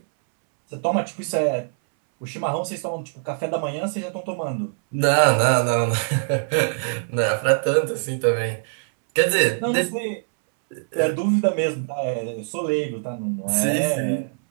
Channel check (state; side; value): silent; left; 63 dB below the other